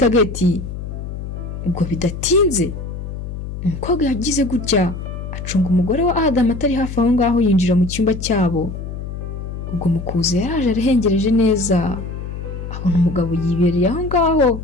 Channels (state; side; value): noise; left; hum, 8 dB below the sound